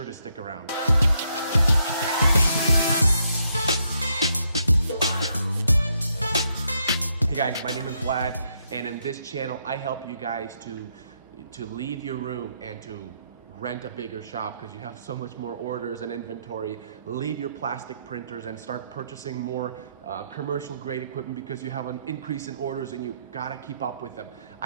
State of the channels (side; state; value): both; inverted; correlation -0.76